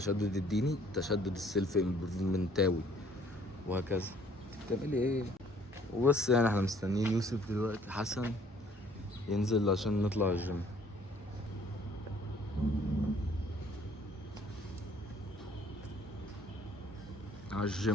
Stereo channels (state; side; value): normal; both; correlation 0.59